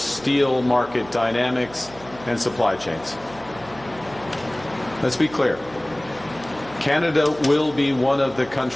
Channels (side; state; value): right; noise; hum, 20 dB below the sound